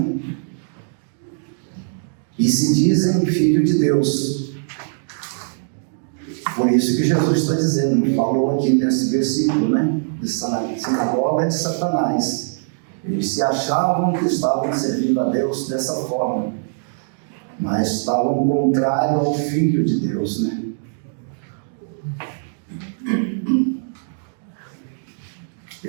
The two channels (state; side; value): silent; left; digital silence